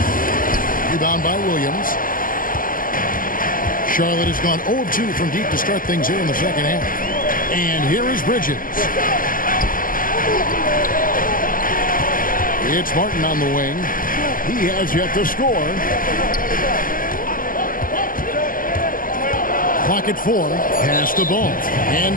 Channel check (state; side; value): late; right; 0.41 ms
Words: Rebound by Williams. Charlotte has gone 0 of 2 from deep to start things here in the second half. And here is Bridges. It's Martin on the wing. He has yet to score. Clock at 4. Pass the ball.